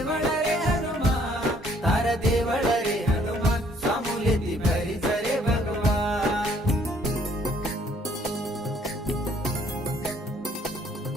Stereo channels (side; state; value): both; normal; correlation 0.63